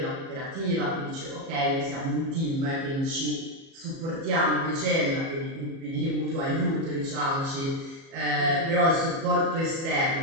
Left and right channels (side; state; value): left; late; 37 ms